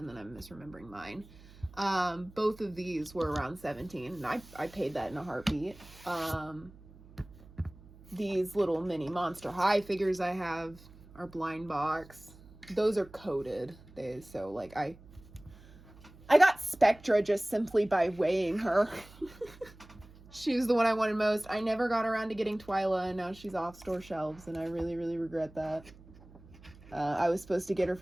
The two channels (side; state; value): right; noise; hum, 22 dB below the sound